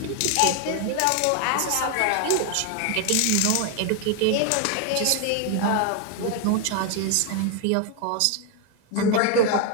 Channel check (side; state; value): both; different; correlation 0.01